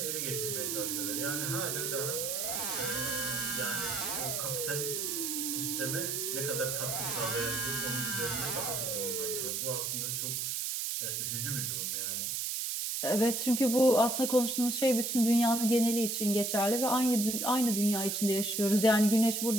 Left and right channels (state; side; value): noise; right; hiss, 1 dB below the sound